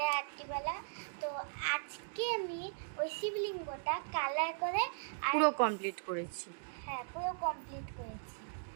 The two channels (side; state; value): left; silent; digital silence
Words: রাত্রিবেলা। তো আজকে আমি ওই শিবলিঙ্গটা কালার করে পুরো কমপ্লিট করেছি। হ্যাঁ, পুরো কমপ্লিট করেছি।